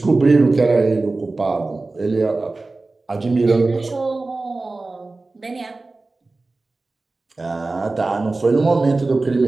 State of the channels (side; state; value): left; quieter; 3.4 dB